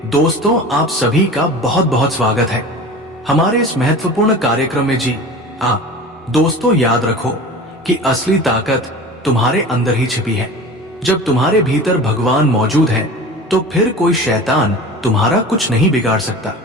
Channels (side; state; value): both; normal; correlation 0.36